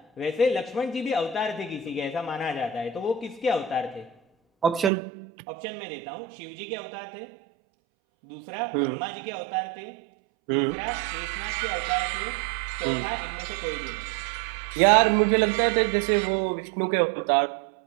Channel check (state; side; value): drops out; left; at 4.9 s